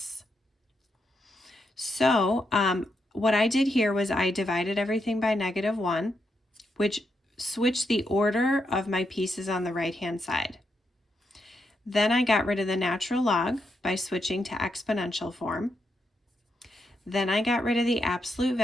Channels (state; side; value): normal; both; correlation 0.82